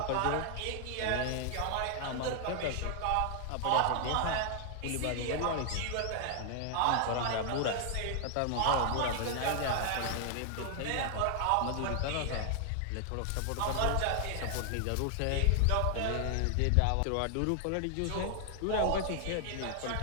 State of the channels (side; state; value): both; different; correlation 0.00